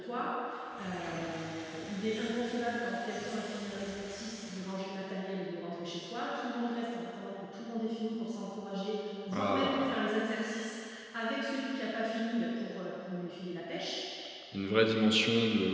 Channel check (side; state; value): both; identical; correlation 1.00